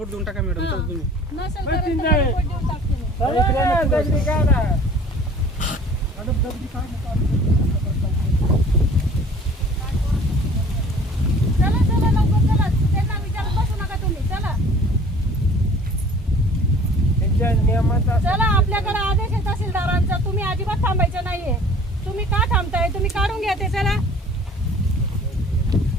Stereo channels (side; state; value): both; normal; correlation 0.49